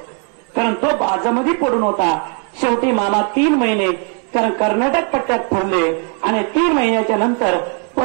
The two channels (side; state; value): left; quieter; 37.6 dB